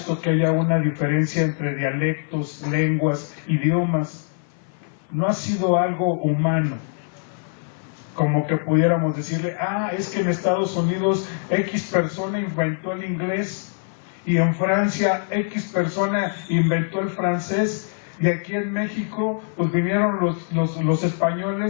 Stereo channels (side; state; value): right; silent; 55 dB below the other